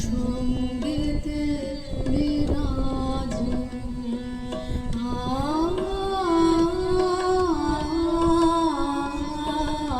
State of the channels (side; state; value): both; identical; correlation 1.00